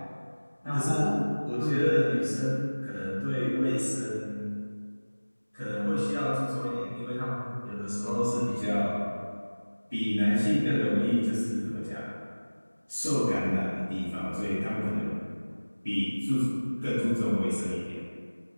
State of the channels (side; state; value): both; inverted; correlation -1.00